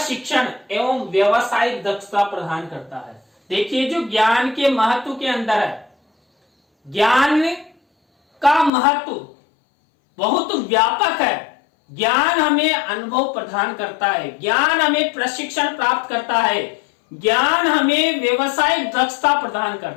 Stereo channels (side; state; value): right; drops out; at 8.7 s